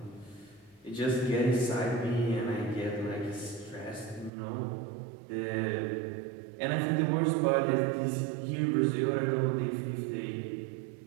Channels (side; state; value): left; drops out; at 4.3 s